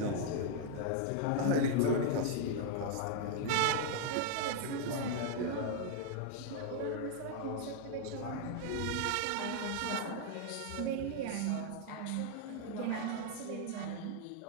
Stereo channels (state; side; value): different; both; correlation 0.00